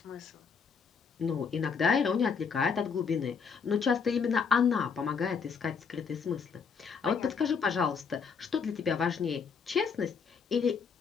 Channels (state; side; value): quieter; right; 5.9 dB